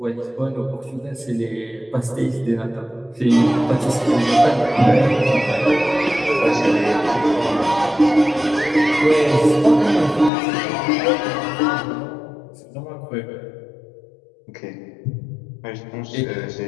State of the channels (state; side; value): drops out; right; at 10.3 s